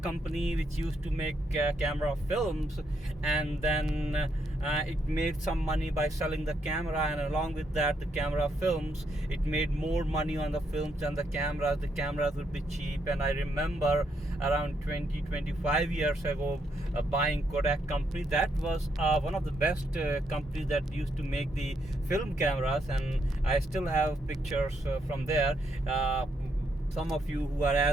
which used to make camera films, and then it made some money by selling the camera, and along with that the camera films, it made more money on the films than the cameras. The cameras would be cheap, and I remember around 25 years ago buying Kodak company. That was one of the best companies that used to make the film cameras, and I still have pictures from there. Some of you who are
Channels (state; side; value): normal; both; correlation 0.77